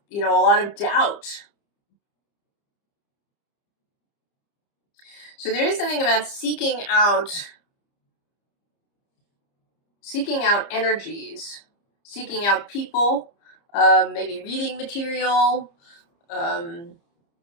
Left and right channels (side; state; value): right; late; 30 ms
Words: you know, a lot of doubt. So there is something about seeking out energies, seeking out people, maybe reading material,